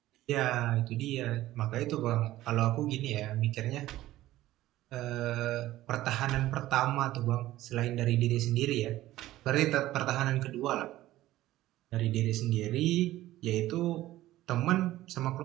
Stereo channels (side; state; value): left; quieter; 15.5 dB